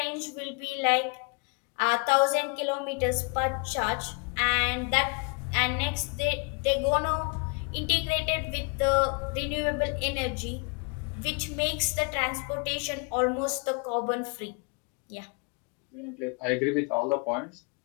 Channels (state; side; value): quieter; right; 35.5 dB